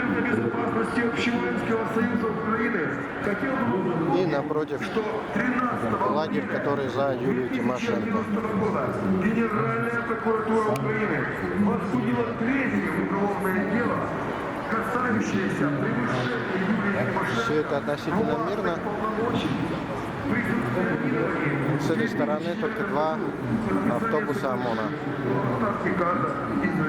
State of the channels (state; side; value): identical; both; correlation 1.00